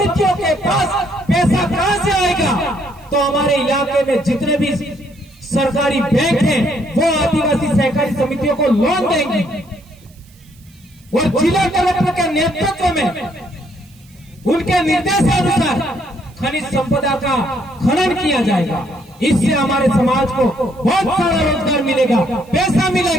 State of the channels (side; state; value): right; noise; hiss, 29 dB below the sound